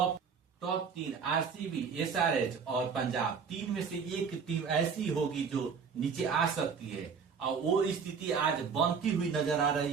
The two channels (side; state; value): left; quieter; 6.0 dB